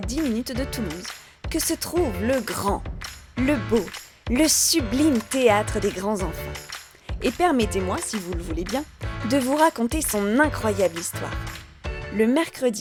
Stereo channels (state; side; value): identical; both; correlation 1.00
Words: 10 minutes de Toulouse, que se trouve le grand, le beau, le sublime théâtre des grands enfants. Et permettez-moi, si vous le voulez bien, de vous raconter son incroyable histoire. Le